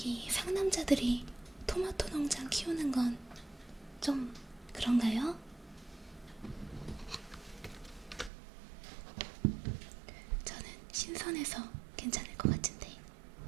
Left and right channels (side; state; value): left; drops out; at 8.3 s